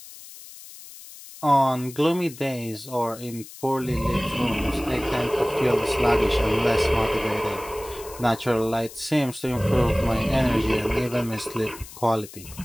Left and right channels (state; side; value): noise; left; hiss, 17 dB below the sound